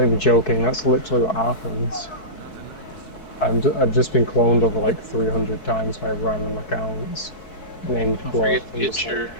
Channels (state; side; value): late; right; 4.6 ms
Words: even joking, that's literally what happens. I've just been cloned over like 300 times by random accounts. named Don't Dwarf. forget I'm to get just like, your